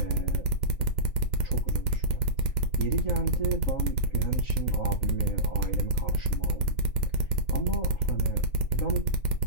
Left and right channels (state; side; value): late; right; 3.7 ms